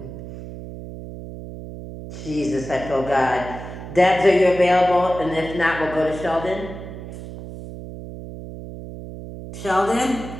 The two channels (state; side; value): noise; right; hum, 11 dB below the sound